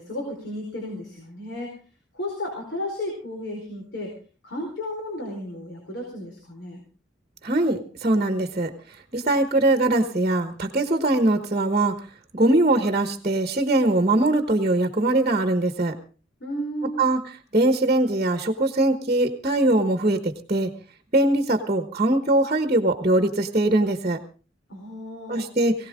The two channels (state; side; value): normal; both; correlation 0.42